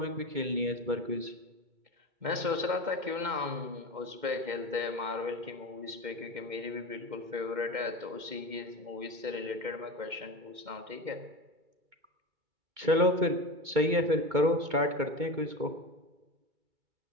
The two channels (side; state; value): left; late; 2.1 ms